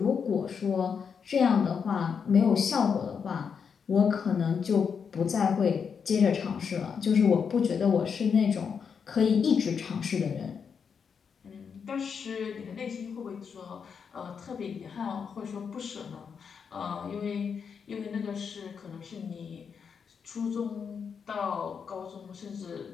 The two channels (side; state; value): right; quieter; 6.5 dB